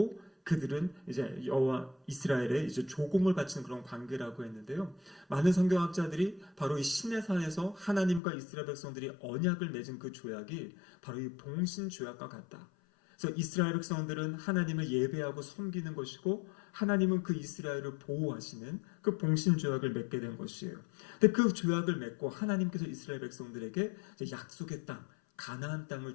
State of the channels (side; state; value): right; drops out; at 8.2 s